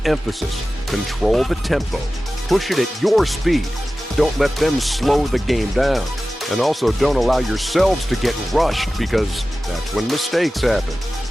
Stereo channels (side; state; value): both; normal; correlation 0.95